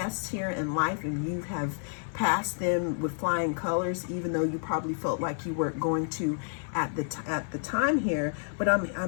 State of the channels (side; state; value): right; silent; 58 dB below the other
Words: here in life, and you have passed them with flying colors, even though you probably felt like you weren't going to at the time here. But